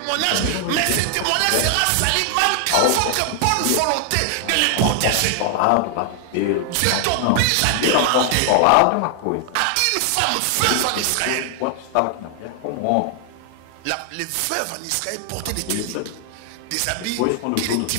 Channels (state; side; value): different; both; correlation 0.00